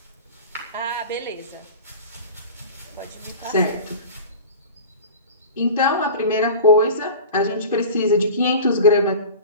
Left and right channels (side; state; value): both; inverted; correlation -0.36